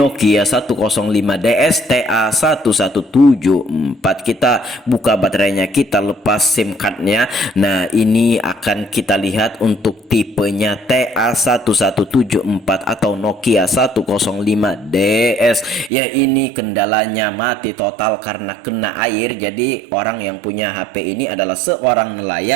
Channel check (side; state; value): left; drops out; at 15.9 s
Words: 105DS TA1174. Kita buka baterainya, kita lepas SIM cardnya. Nah ini akan kita lihat untuk tipenya TA1174 atau Nokia 105DS. Ya, ini kendalanya mati total karena kena air. Jadi orang yang punya HP ini adalah seorang